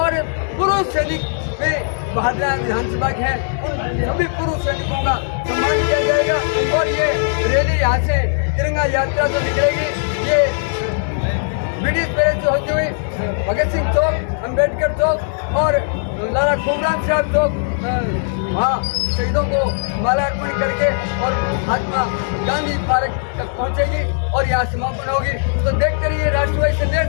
पूर्व सैनिक भी भादरा विधानसभा के हैं। उन सभी पूर्व सैनिकों का सम्मान किया जाएगा। और ये रैली यहाँ से तिरंगा यात्रा जो निकलेगी, ये ब्रिटिश पैलेस से होती हुई भगत सिंह चौक, अम्बेडकर चौक और लाला खुमराम साहब चौक, वहाँ शहीदों को माला अर्पण करके और महात्मा गांधी पार्क तक पहुँचेगी और यहाँ समापन होगी। तो देखते रहिए राष्ट्रवादी संदेश।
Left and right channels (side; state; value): right; silent; digital silence